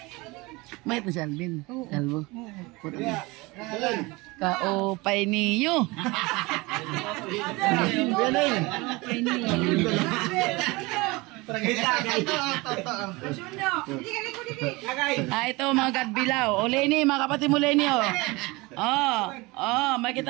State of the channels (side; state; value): left; quieter; 23.6 dB